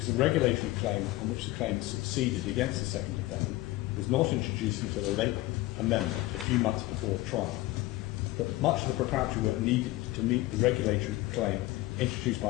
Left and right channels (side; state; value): right; quieter; 18.5 dB